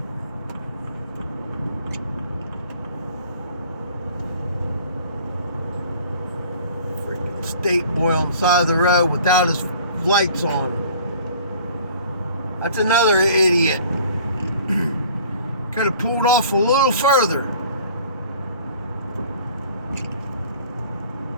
Freaking state boy on the side of the road without his lights on. That's another idiot. Could have pulled off a little further.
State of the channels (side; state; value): both; inverted; correlation -0.50